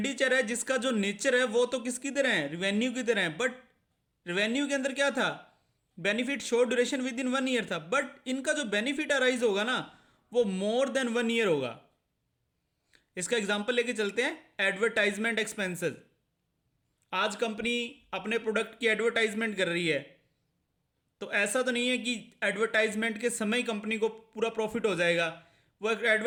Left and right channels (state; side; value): identical; both; correlation 1.00